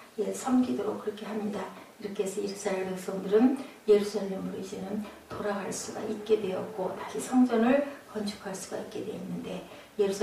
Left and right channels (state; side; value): identical; both; correlation 1.00